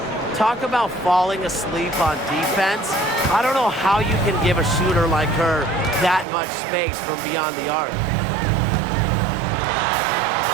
Talk about falling asleep on defense. I don't know how you can give a shooter like her that much space from beyond the arc.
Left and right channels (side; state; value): left; drops out; at 6.2 s